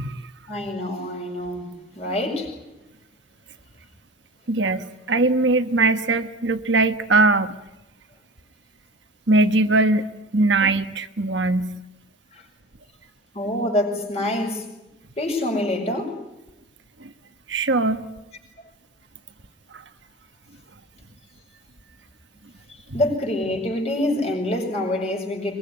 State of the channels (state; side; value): normal; both; correlation 0.35